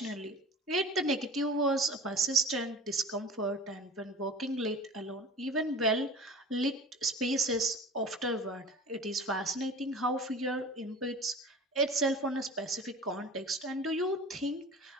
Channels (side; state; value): both; normal; correlation 0.38